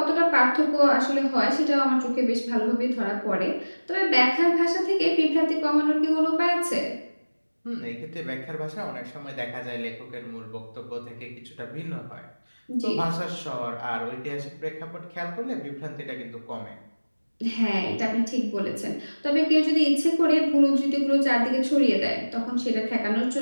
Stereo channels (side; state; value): both; inverted; correlation -1.00